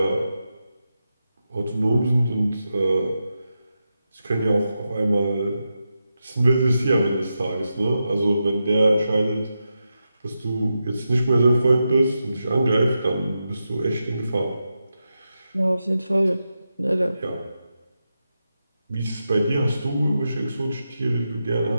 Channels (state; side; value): inverted; both; correlation -0.89